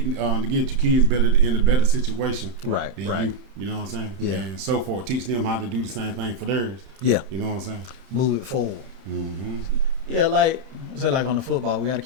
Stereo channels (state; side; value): late; left; 31 ms